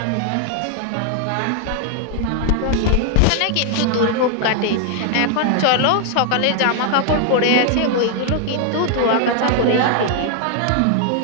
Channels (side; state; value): both; different; correlation 0.00